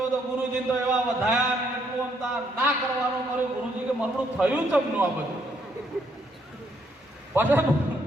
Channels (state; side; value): normal; both; correlation 0.72